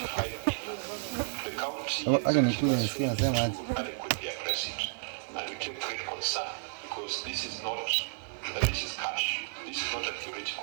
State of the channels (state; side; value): silent; left; digital silence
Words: million, the county is to adequately address it, and we take great concern because this is cash. This is not a